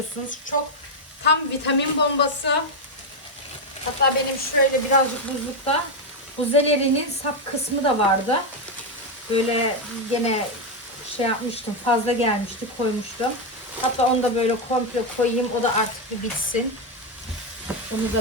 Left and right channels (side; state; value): both; normal; correlation 0.05